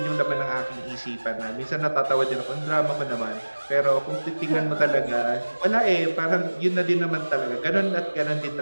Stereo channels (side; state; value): both; inverted; correlation -1.00